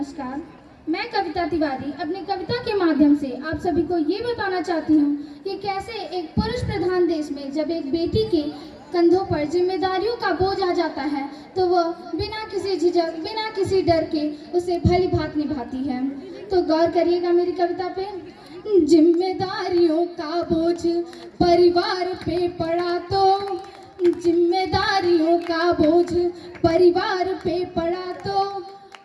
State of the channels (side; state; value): both; identical; correlation 1.00